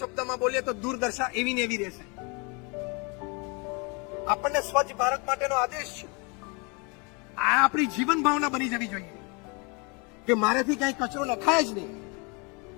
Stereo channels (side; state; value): right; quieter; 31.3 dB